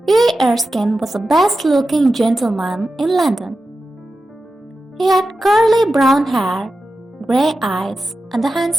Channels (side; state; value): both; normal; correlation 0.91